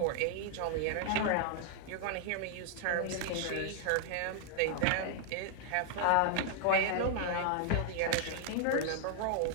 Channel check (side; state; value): both; different; correlation -0.01